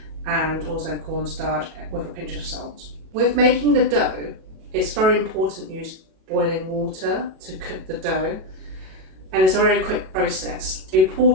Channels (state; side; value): late; left; 37 ms